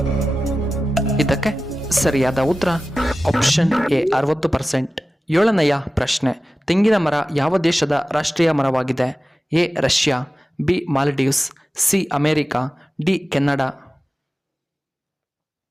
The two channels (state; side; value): normal; both; correlation 0.95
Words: ಇದಕ್ಕೆ ಸರಿಯಾದ ಉತ್ತರ ಆಪ್ಷನ್ ಎ 60%. ಏಳನೆಯ ಪ್ರಶ್ನೆ, ತೆಂಗಿನ ಮರ ಯಾವ ದೇಶದ ರಾಷ್ಟ್ರೀಯ ಮರವಾಗಿದೆ? A Russia, B Maldives, C America, D Canada.